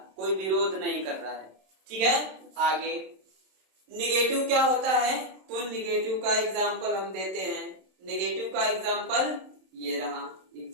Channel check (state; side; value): late; left; 27 ms